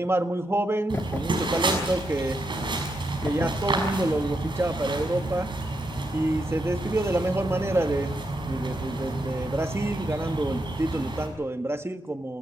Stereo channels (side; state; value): both; normal; correlation 0.82